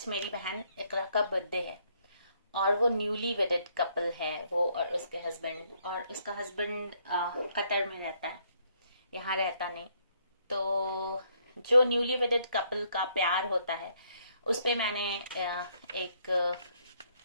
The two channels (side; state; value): both; inverted; correlation -0.70